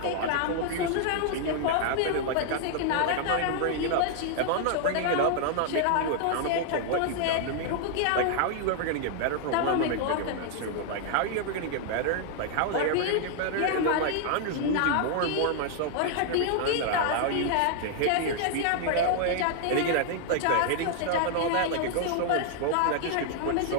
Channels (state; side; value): different; both; correlation -0.01